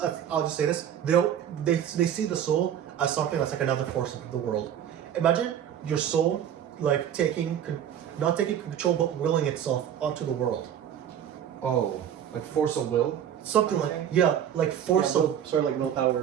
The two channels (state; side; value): quieter; left; 9.7 dB